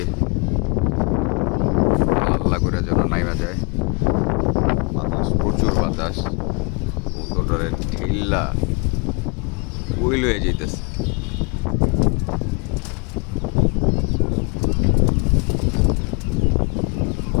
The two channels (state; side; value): quieter; right; 32.5 dB